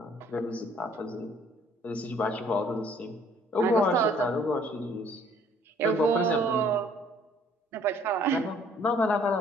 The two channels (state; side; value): normal; both; correlation 0.59